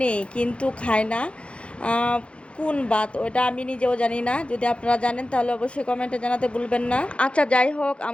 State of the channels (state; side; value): late; right; 0.059 ms